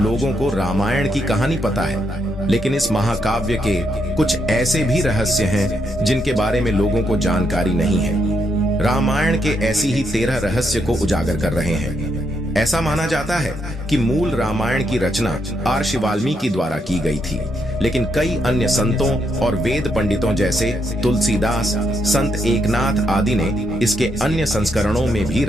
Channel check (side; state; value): both; normal; correlation 0.78